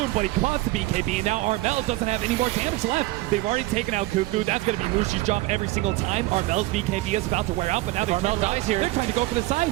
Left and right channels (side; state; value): left; quieter; 18.6 dB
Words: but he caught the BKB, and now Armel doesn't have any more damage left. They've already taken out Cuckoo. That's gonna be Mushi's job every single time. Armel's BKB is about to wear out, but now Armel dies here. They're trying to go for the